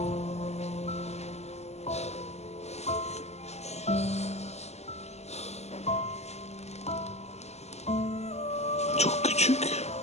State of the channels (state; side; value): late; right; 0.32 ms